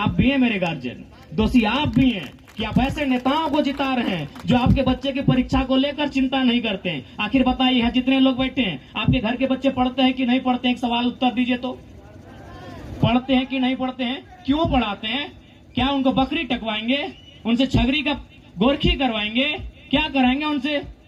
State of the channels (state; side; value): identical; both; correlation 1.00